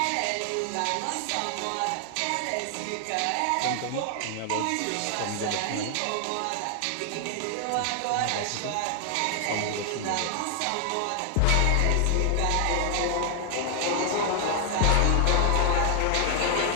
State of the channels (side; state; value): both; different; correlation 0.00